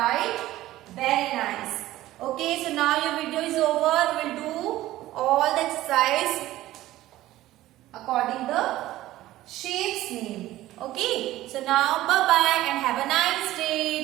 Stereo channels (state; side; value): quieter; left; 15.6 dB